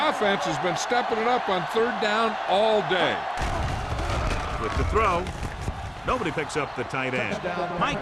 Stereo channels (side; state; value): both; identical; correlation 1.00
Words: offense has been stepping it up on third down all day. With the throw, nobody picks up the tight end. Mike